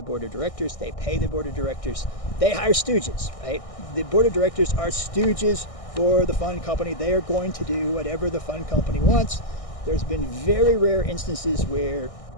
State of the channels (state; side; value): late; right; 1.6 ms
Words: board of directors, they pay the board of directors, they hire stooges, right? The board of directors are stooges for the fund company. They are going to do whatever the fund company wants. There's been very rare instances where